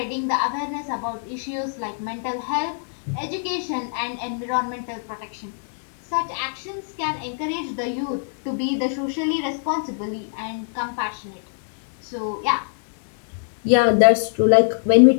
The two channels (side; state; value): right; silent; digital silence